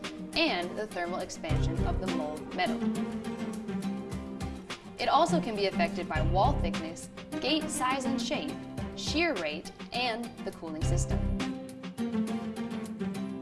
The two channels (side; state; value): both; identical; correlation 1.00